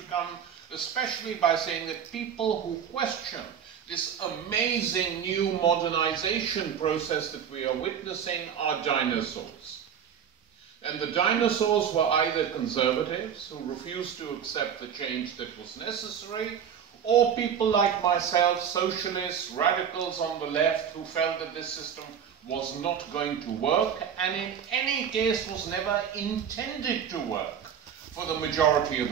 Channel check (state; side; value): quieter; left; 8.2 dB